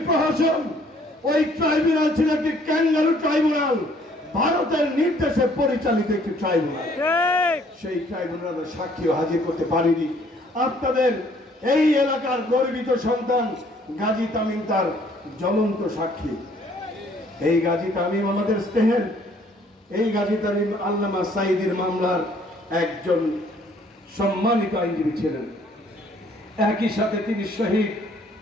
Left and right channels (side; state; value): both; normal; correlation 0.61